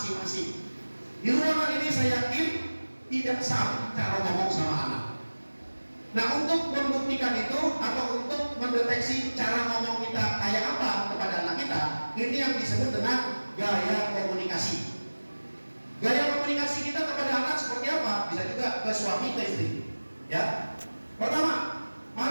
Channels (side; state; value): both; inverted; correlation -1.00